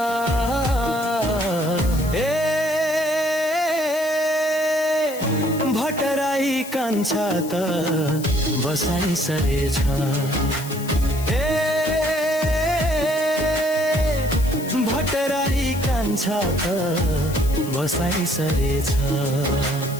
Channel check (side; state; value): left; noise; hiss, 14 dB below the sound